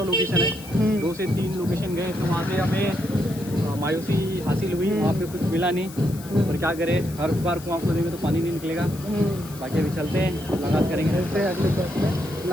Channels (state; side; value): noise; left; hiss, 17 dB below the sound